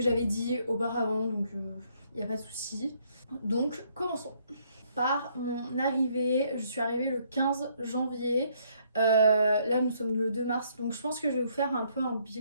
j'avais dit auparavant, donc il n'y a pas de souci. Donc commençons par mon arrivée. Je suis arrivée le 15 janvier. Là nous sommes le 2 mars, donc je pense que je vais vous faire un peu un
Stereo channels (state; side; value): inverted; both; correlation -0.68